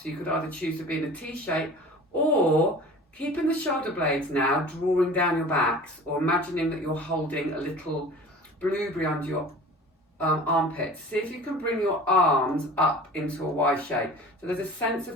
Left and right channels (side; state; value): both; normal; correlation 0.42